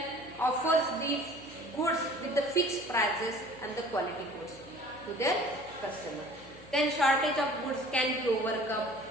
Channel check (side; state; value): left; noise; hum, 23 dB below the sound